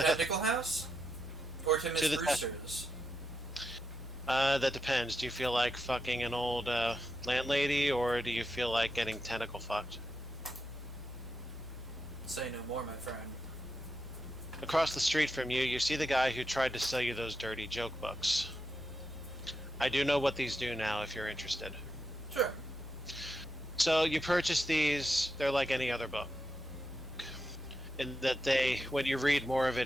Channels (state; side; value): normal; both; correlation 0.85